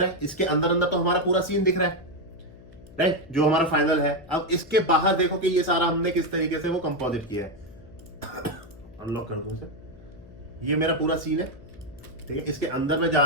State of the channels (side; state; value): left; noise; hum, 21 dB below the sound